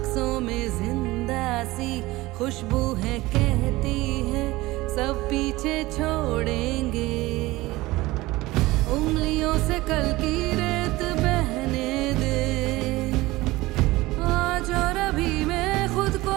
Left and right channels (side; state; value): left; quieter; 19.5 dB